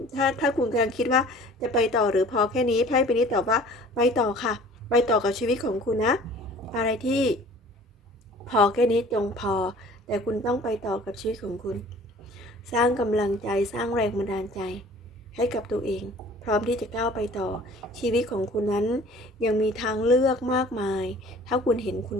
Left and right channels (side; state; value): both; normal; correlation 0.48